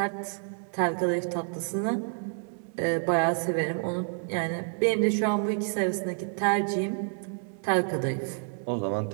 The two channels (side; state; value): left; silent; 55 dB below the other